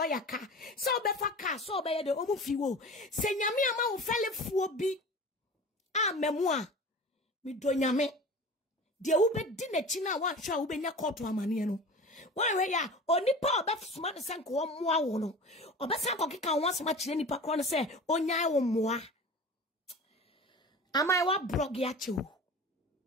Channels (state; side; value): normal; both; correlation 0.36